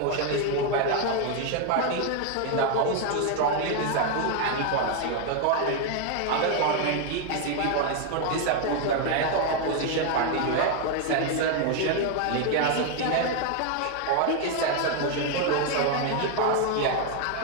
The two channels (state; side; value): different; both; correlation 0.01